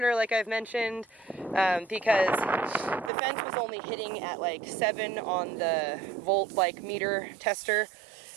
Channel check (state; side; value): drops out; left; at 3.1 s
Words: like I've mentioned, because the fence was only hitting at like 7 on the volt meter tester.